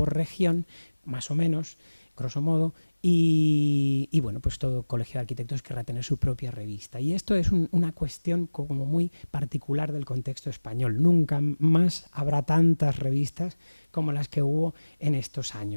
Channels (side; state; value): both; inverted; correlation -1.00